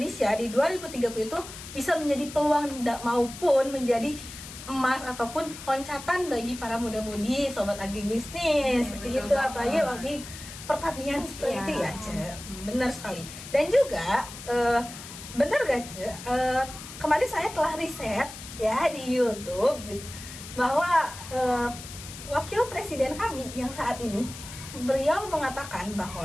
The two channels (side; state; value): left; noise; hiss, 13 dB below the sound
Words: di 2030 itu bisa menjadi peluang maupun menjadi emas ataupun loncatan bagi para muda-mudi sobat agribisnis seperti itu, apalagi bagi pertanian seperti itu ya, Ce. Benar sekali. Dan juga benar gak, Ce? Kemarin saya telah riset ya di YouTube bahwa wakil presiden kami yang saat ini beliau mengatakan